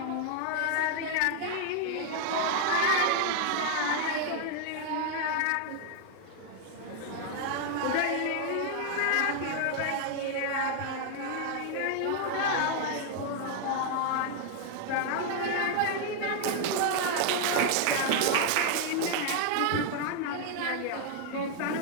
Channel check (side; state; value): both; different; correlation 0.00